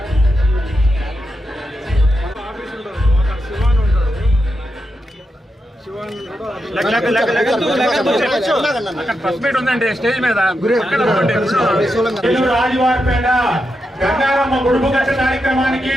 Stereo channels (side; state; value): both; normal; correlation 0.86